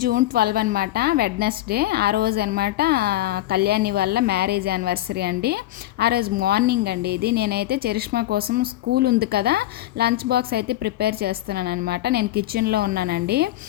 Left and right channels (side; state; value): right; quieter; 15.0 dB